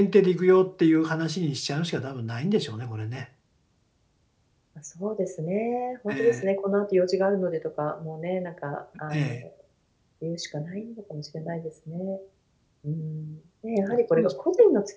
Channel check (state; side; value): identical; both; correlation 1.00